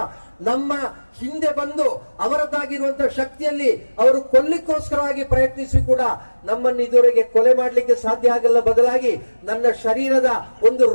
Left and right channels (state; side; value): inverted; both; correlation -1.00